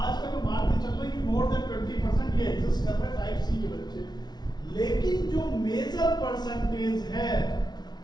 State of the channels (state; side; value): late; right; 0.20 ms